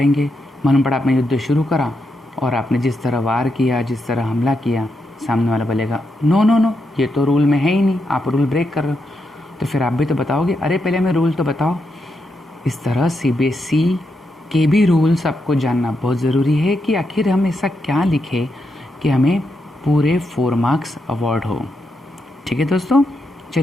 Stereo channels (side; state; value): both; normal; correlation 0.83